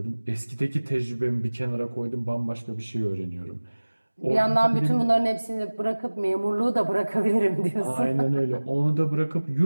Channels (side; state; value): both; inverted; correlation -1.00